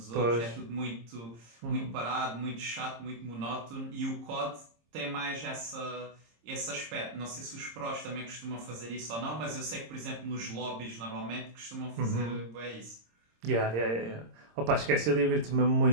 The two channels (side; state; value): left; late; 26 ms